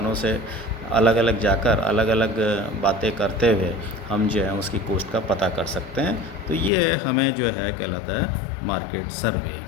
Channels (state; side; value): drops out; right; at 6.7 s